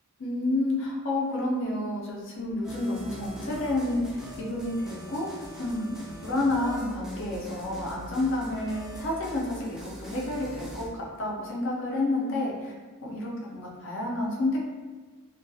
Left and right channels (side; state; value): both; normal; correlation 0.56